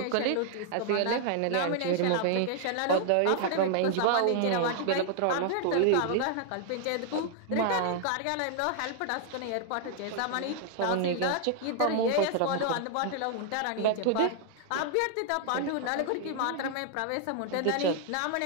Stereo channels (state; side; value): different; both; correlation 0.00